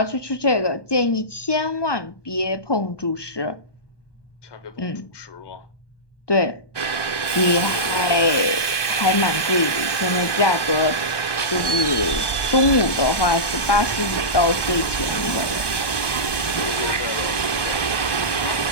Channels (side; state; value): right; late; 1.2 ms